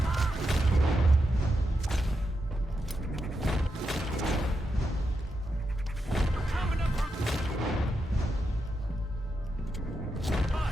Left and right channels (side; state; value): both; normal; correlation 0.85